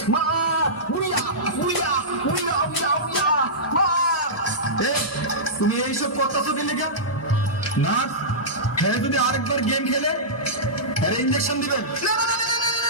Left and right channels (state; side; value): normal; both; correlation -0.16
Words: মার, উড়িয়া উড়িয়া উড়িয়া উড়িয়া উড়িয়া মার। তুমি এইসব করতেছো কি লেগে? না হ্যাঁ, যদি আরেকবার গেম খেলে আরে ইঞ্জেকশন দিবেন,